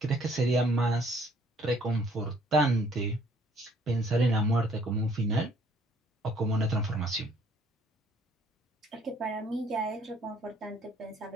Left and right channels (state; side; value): normal; both; correlation 0.61